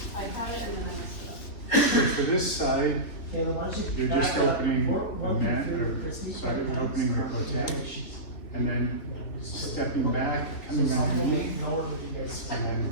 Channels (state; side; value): late; right; 3.5 ms